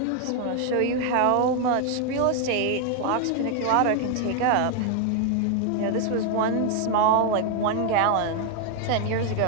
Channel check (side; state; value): both; different; correlation 0.01